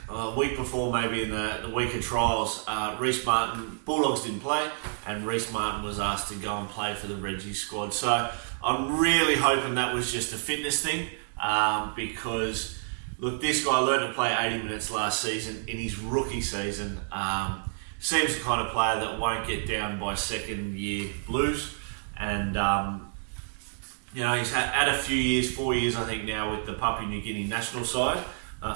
a week before, maybe in the week of trials, Reece Martin, Bulldogs didn't play, and Reece Martin was asked to go and play for the Reggie squad. So I'm really hoping that was just a fitness thing, because, look, this guy learned to play 80 minutes last season in his rookie season. Seems the kind of player that won't get down by second-year blues, and he's had a few years, 4 years I think now, with the Papua New Guinea national side,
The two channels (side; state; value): left; silent; digital silence